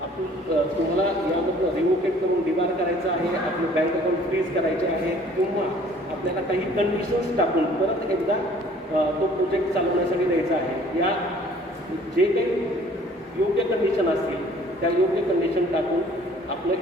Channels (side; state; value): both; normal; correlation 0.54